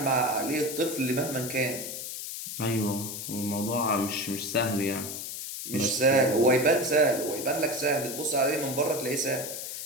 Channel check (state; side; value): noise; left; hiss, 7 dB below the sound